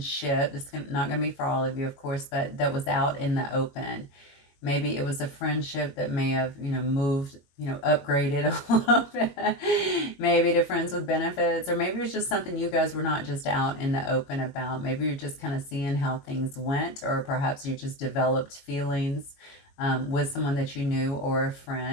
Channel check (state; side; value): late; right; 22 ms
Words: It's not going to be for all of you, of course, but that was out in the open. Maybe it was a friendship that may have, moved, upgraded a little bit. Maybe to friends with benefits, or maybe it was just something you guys were not just out in the open about. Maybe you're just kind of seeing how things went, or perhaps you just developed feelings with someone that you knew or a